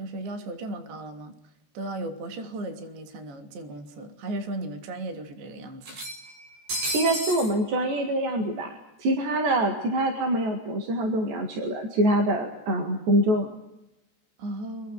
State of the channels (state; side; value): late; left; 14 ms